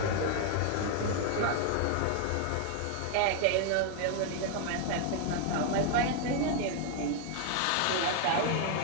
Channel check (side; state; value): both; different; correlation 0.01